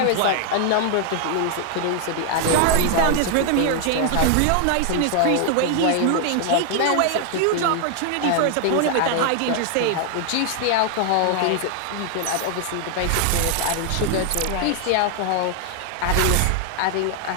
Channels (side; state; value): both; different; correlation 0.00